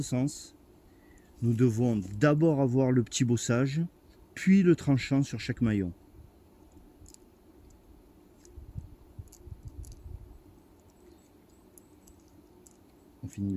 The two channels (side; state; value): both; identical; correlation 1.00